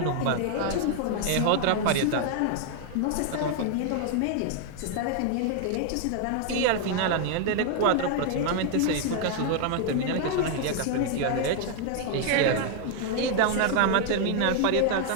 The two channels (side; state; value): both; different; correlation 0.00